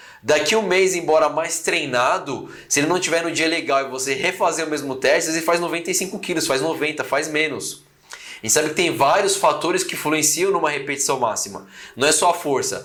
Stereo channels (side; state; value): both; identical; correlation 1.00